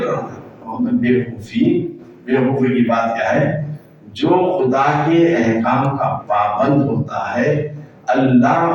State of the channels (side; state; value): both; identical; correlation 1.00